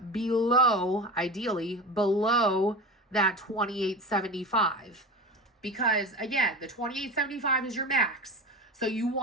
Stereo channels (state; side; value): normal; both; correlation 0.29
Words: below, ideally, below that $28.75. because again, the $28.75 is your max. So you